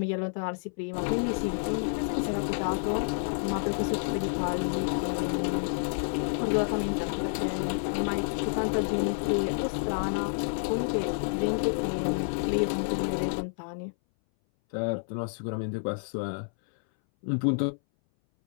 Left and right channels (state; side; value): silent; right; 58 dB below the other